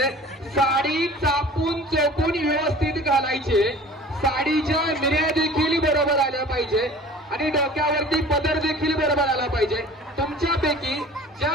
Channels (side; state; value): both; normal; correlation 0.44